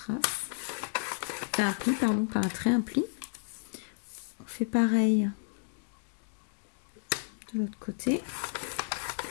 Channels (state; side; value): silent; right; digital silence